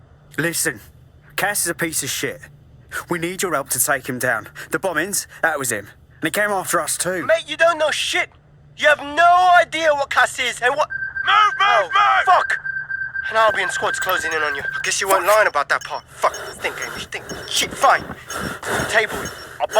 Listen, Cass is a piece of shit. We need your help to take him down. The bombings, that was him. And he came after us too. Mate, you don't know shit. You have no idea what Cass is and what... Move! Fuck! An Albion squad's closing in on you. I guess you weren't lying about that part. Fuck, think, Amish, think. Shit, fine. Table it. I'll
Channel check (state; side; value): identical; both; correlation 1.00